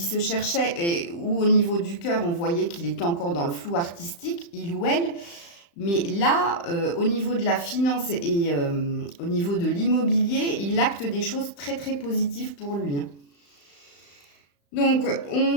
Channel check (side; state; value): right; late; 35 ms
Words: cherchait, et où au niveau du cœur, on voyait qu'il était encore dans le flou artistique, il ou elle. Mais là, au niveau de la finance et au niveau de l'immobilier, il acte des choses très très positives pour lui. Donc,